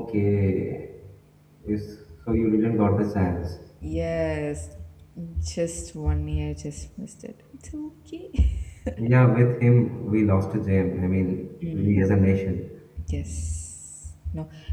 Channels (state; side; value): identical; both; correlation 1.00